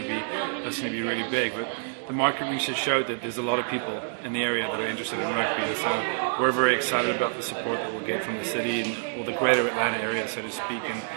to be really big. But the market research showed that there's a lot of people in the area that are interested in rugby, and so we're very excited about the support that we'll get from the city and the greater Atlanta area, so to speak.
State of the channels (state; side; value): silent; left; 60 dB below the other